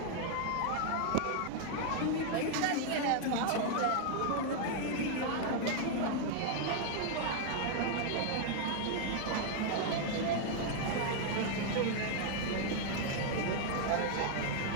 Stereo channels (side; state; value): both; different; correlation 0.00